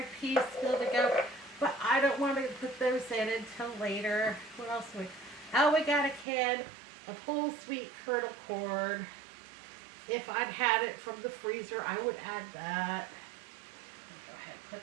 peas still to go, but I don't want to put those in until later. What else we? Oh, we got a can of whole sweet kernel corn. If I'd had it from the freezer, I would add that. Go ahead and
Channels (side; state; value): left; drops out; at 6.2 s